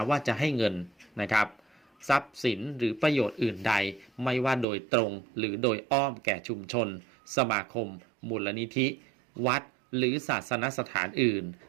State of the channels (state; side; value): drops out; left; at 4.7 s